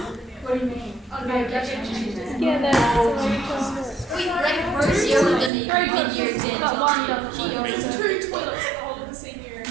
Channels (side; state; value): left; drops out; at 5.5 s